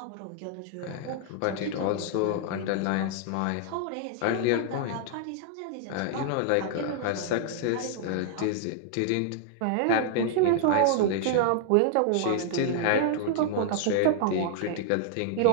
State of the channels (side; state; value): both; different; correlation 0.00